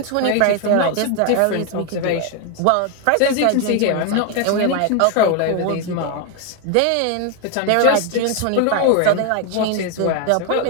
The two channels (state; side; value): different; both; correlation 0.01